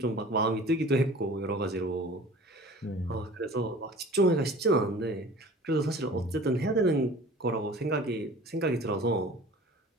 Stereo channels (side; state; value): both; normal; correlation 0.44